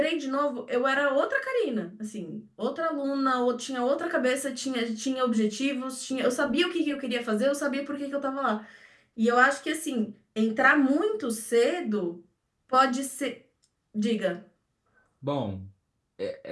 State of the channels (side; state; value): both; identical; correlation 1.00